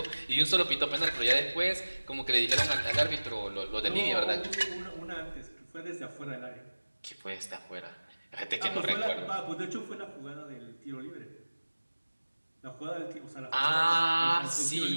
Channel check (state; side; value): inverted; both; correlation -1.00